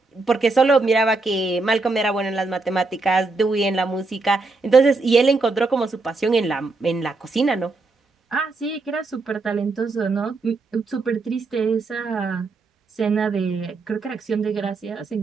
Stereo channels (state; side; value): quieter; left; 3.6 dB